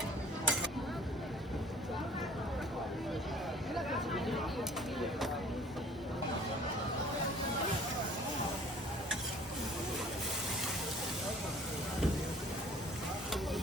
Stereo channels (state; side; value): normal; both; correlation 0.52